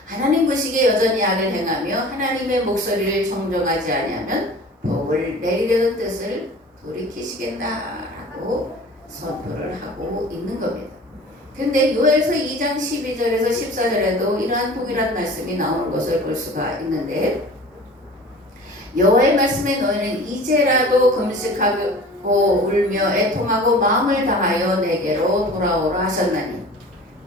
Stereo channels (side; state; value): both; normal; correlation 0.42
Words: 하나님 보시기에 여전히 악을 행하며 하나님의 목소리를 청종하지 아니하면 복을 내리려던 뜻을 돌이키시겠다라고 선포를 하고 있는 겁니다. 근데 요엘서 2장 12절에서 14절에도 이러한 동일한 말씀이 나오는 것을 볼 수가 있는데 여호와의 말씀에 너희는 이제라도 금식하고 울며 애통하고 마음을 다하여 내게로 돌아오라 하셨나니